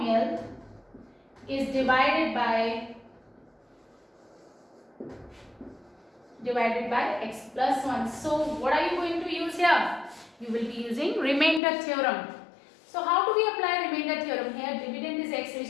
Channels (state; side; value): drops out; right; at 11.6 s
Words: is divided by x plus 1. So what are you going to use here? You will be using remainder theorem. So how do we apply remainder theorem here? Dividend is x